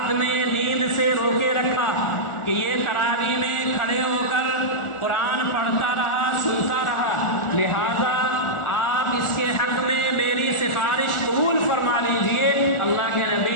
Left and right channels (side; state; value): right; late; 1.4 ms